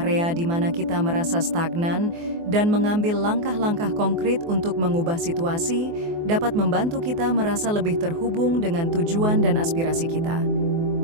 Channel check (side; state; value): left; late; 24 ms